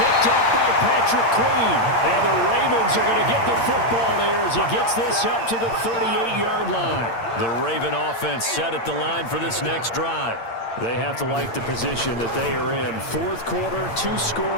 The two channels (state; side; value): late; right; 8.7 ms